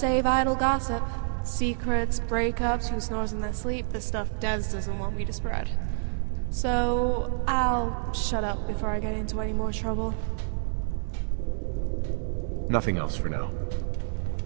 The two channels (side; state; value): left; silent; digital silence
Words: idle gossip. Secrets, breakups, who snores in their sleep, the stuff Des doesn't want me to spread. So I'll shut up before I get into any more trouble. Nothing else for now.